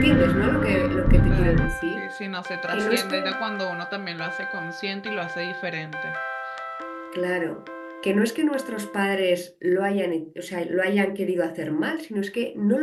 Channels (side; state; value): both; identical; correlation 1.00